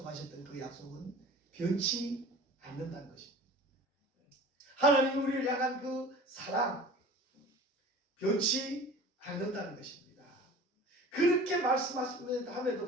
그 약속은 변치 않는다는 것입니다. 하나님 우리를 향한 그 사랑 변치 않는다는 것입니다. 그렇게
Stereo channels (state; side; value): normal; both; correlation 0.41